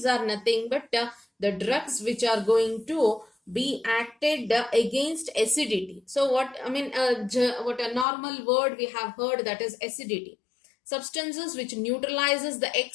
are nothing but the drugs which are going to be acted against acidity. So what a normal word we have heard, that is acidity. Substances which neutralizes the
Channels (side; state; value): right; drops out; at 8.1 s